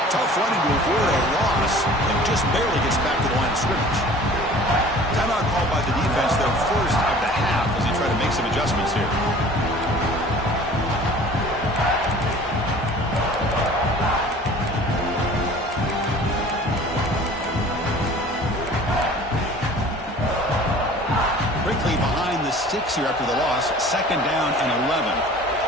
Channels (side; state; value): both; normal; correlation 0.46